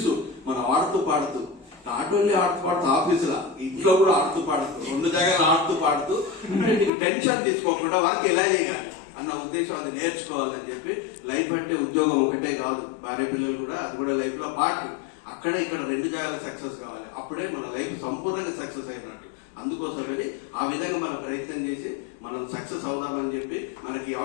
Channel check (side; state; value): right; drops out; at 6.9 s